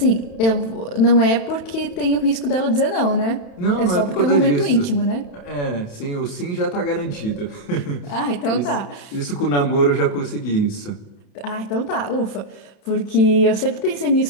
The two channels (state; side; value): late; right; 31 ms